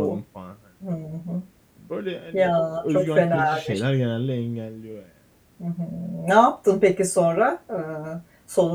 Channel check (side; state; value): both; identical; correlation 1.00